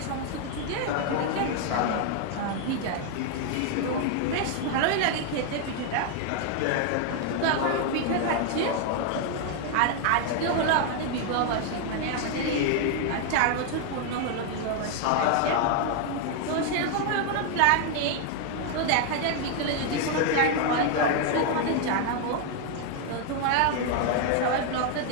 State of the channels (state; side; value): different; both; correlation 0.00